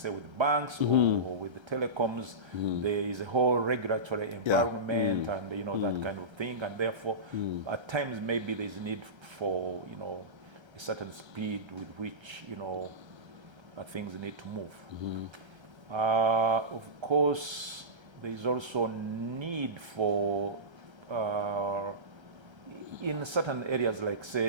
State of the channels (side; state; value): left; late; 1.3 ms